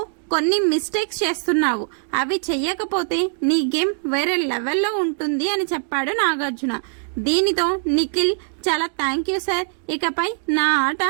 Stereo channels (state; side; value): silent; left; digital silence